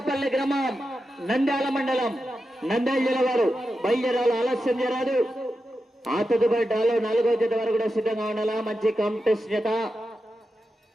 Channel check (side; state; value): both; normal; correlation 0.89